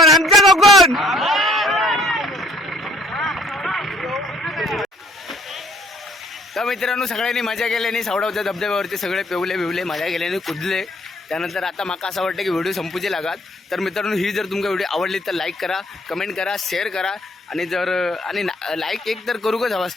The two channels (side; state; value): both; normal; correlation 0.62